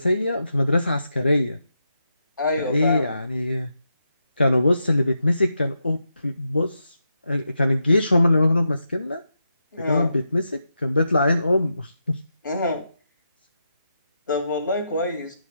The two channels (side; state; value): both; inverted; correlation -0.85